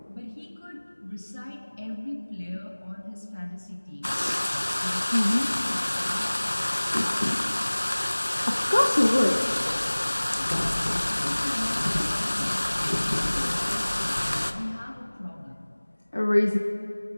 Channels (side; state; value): both; inverted; correlation -1.00